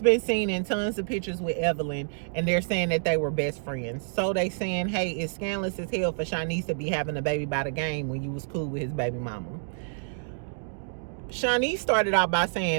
seen in tons of pictures with Evelyn, and they're saying that they were best friends. So they saying, hey, it's scandalous as hell for Shaneice to be having a baby by the game when you was cool with his baby mama. Shaneice started out by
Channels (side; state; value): left; silent; digital silence